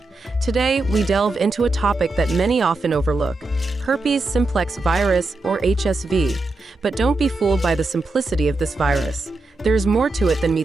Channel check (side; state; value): left; quieter; 3.1 dB